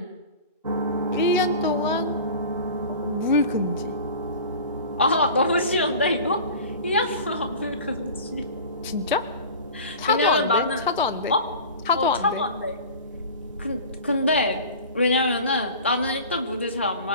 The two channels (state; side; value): inverted; both; correlation -0.38